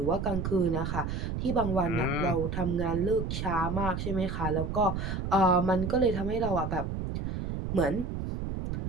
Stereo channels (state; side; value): noise; right; rumble, 3 dB below the sound